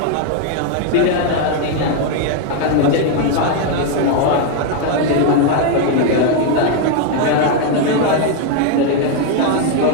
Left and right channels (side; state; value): both; different; correlation 0.01